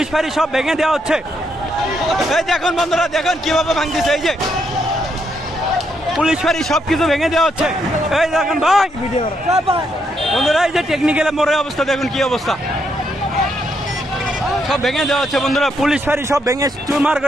ফাঁড়ি সব ভেঙে দেওয়া হচ্ছে। এই দেখুন বন্ধুরা, দেখুন কিভাবে ভাঙতেছে, এই যে পুলিশ ফাঁড়ি সব কিছু ভেঙে দেওয়া হচ্ছে, এই দেখুন ভাই বন্ধুরা, এই যে টেকনিক্যাল মোড়ের অবস্থা দেখুন কি অবস্থা, সব ভেঙে দেওয়া হচ্ছে বন্ধুরা, পুলিশ ফাঁড়ি সব ভেঙে চুরমার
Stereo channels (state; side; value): normal; both; correlation 0.77